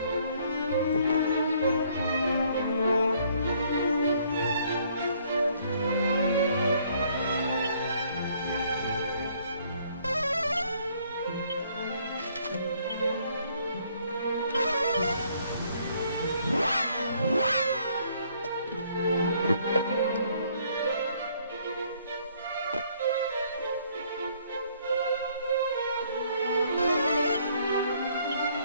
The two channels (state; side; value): inverted; both; correlation -0.64